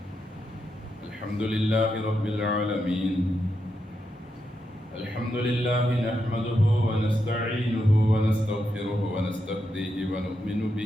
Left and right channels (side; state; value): both; normal; correlation 0.84